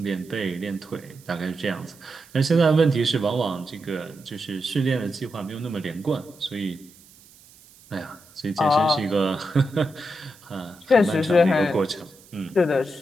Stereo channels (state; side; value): noise; right; hiss, 25 dB below the sound